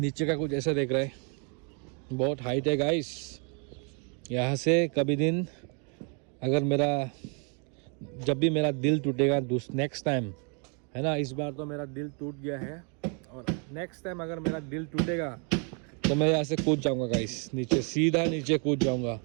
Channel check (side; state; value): left; quieter; 38.0 dB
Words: का कुछ ऐसा देख रहा है, बहुत हाइट है गाइस। यहाँ से कभी दिन अगर जब भी मेरा दिल टूटेगा नेक्स्ट टाइम, है ना, इस बार तो मेरा दिल टूट गया है, और नेक्स्ट टाइम अगर मेरा दिल टूटेगा तो मैं यहाँ से कूद जाऊँगा गाइस, नीचे सीधा नीचे कूद जाऊँगा।